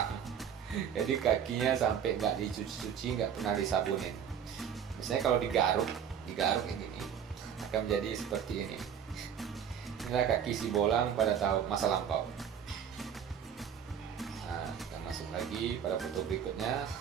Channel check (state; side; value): quieter; left; 8.3 dB